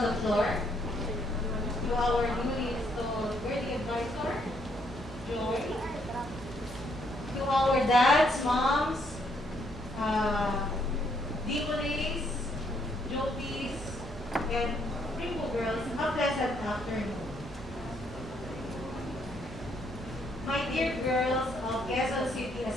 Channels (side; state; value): both; normal; correlation 0.72